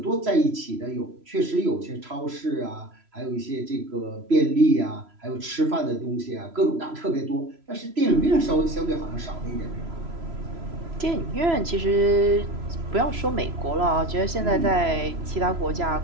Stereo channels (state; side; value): late; left; 3.0 ms